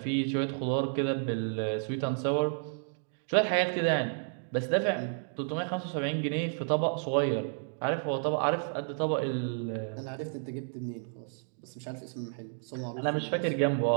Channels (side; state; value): left; silent; digital silence